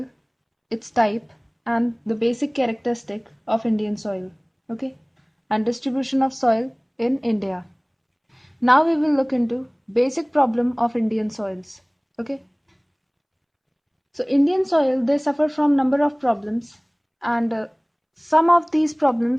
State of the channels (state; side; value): identical; both; correlation 1.00